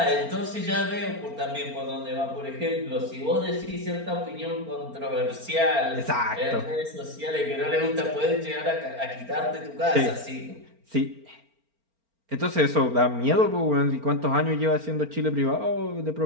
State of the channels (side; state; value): left; late; 4.4 ms